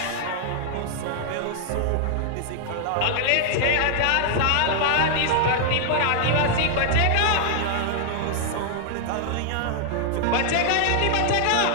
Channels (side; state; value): both; different; correlation 0.00